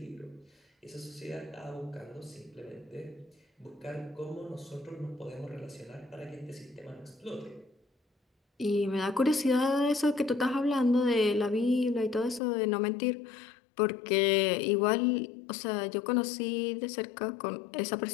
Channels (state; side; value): drops out; right; at 12.4 s